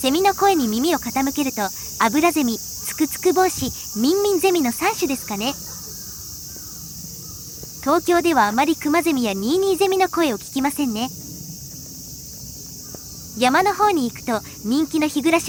ミの声に耳を傾けると、アブラゼミ、ツクツクボウシ、ミンミンゼミの3種ですかね。東京ではあまりクマゼミやニーニーゼミの声を聞きませんね。山の方に行くと人気の日暮ら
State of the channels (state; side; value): identical; both; correlation 1.00